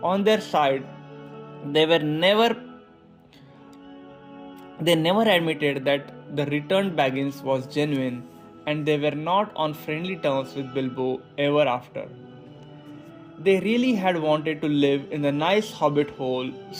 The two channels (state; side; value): identical; both; correlation 1.00